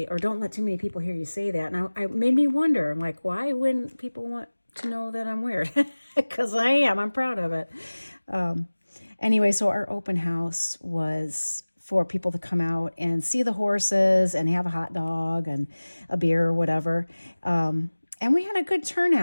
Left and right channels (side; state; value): both; inverted; correlation -1.00